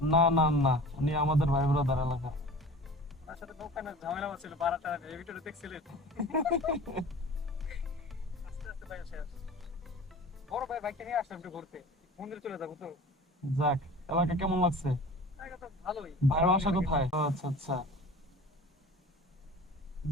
না না না, উনি আমাদের ভাই ব্রাদার এলাকা। ওনার সাথে নৌকানোর ঝামেলা হচ্ছিল, বারাটা এই ভিডিওটা দেখছিলেন। আস্তে আস্তে ভাই শেষ। বড় ভাই বাইকটা নিয়ে আসলাম একটু ঘুরতে, মন্দিরে চলে যাবো তো। যাক, এলাকা কেমন লাগছে? জায়গা তো ভালোই। ভাইয়ের বাসা কোথায়? ও আচ্ছা আচ্ছা,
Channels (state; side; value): normal; both; correlation 0.40